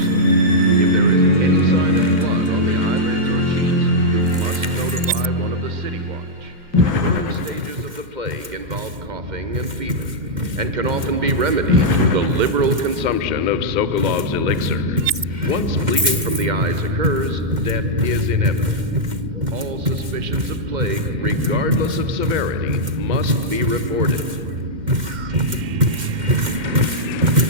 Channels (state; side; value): late; left; 2.1 ms